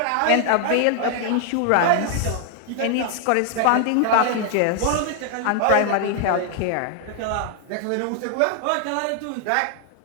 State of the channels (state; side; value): different; both; correlation 0.00